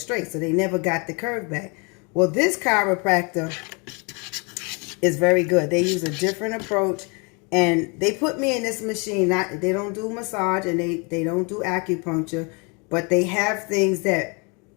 So they never got the curve back. Well, this chiropractor is very good. They use a different approach. And they put me in this machine. They don't do massage and they don't do acupuncture. But they have things that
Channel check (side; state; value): right; quieter; 32.3 dB